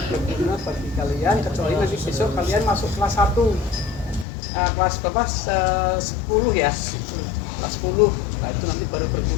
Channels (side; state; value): right; drops out; at 4.2 s